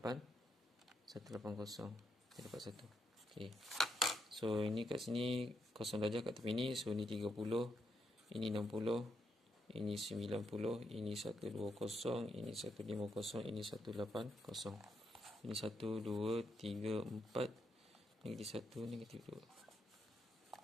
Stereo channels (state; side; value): normal; both; correlation 0.81